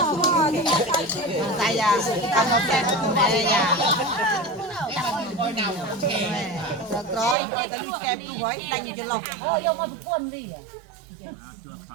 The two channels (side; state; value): left; drops out; at 7.4 s